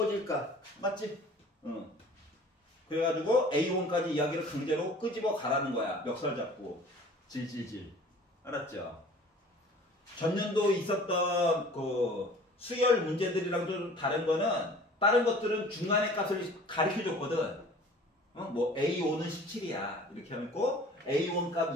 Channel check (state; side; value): normal; both; correlation 0.47